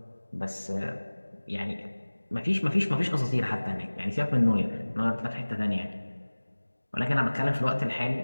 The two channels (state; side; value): inverted; both; correlation -1.00